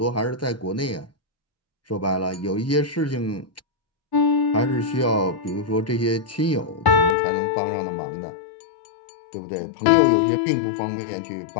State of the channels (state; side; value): drops out; right; at 7.2 s